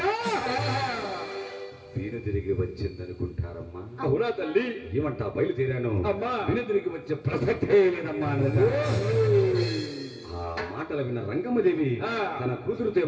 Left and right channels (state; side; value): identical; both; correlation 1.00